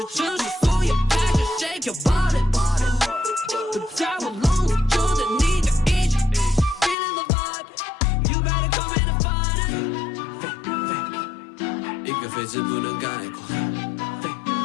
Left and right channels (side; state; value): right; drops out; at 7.0 s